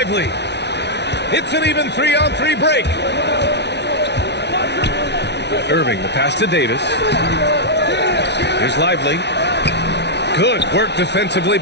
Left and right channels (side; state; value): right; late; 0.50 ms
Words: It's an even 3-on-3 break. Irving, the pass to Davis. Here's Lively. Good work defensively